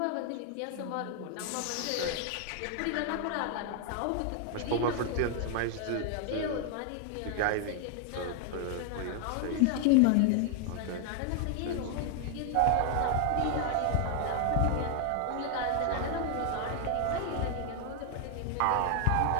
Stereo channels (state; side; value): different; both; correlation 0.00